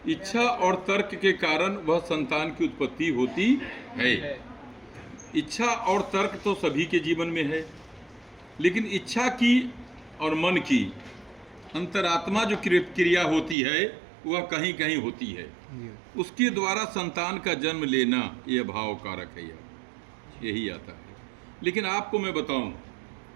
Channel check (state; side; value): drops out; left; at 13.6 s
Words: इच्छा और तर्क के कारण वह संतान की उत्पत्ति होती है। इच्छा और तर्क तो सभी के जीवन में है, लेकिन इच्छा की और मन की अंतरात्मा जो क्रिया होती है वह कहीं कहीं होती है। उसके द्वारा संतान का जन्म लेना यह भाव कारक है, यही आता है। लेकिन आपको मैं बताऊं,